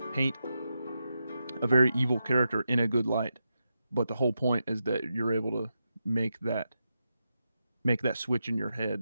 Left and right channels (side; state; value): both; inverted; correlation -0.87